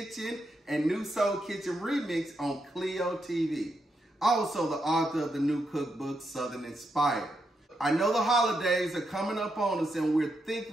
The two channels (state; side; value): normal; both; correlation 0.82